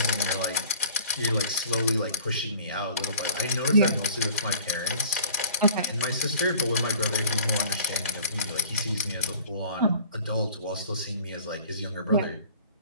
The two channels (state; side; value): inverted; both; correlation -0.49